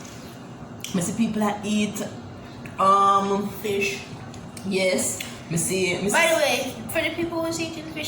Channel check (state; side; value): identical; both; correlation 1.00